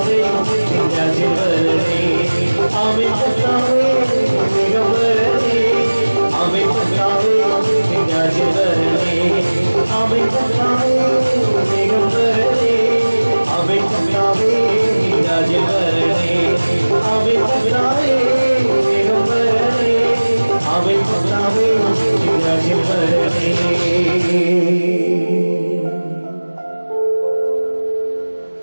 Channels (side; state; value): both; inverted; correlation -1.00